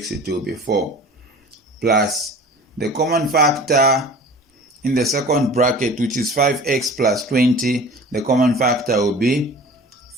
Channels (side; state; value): both; normal; correlation 0.42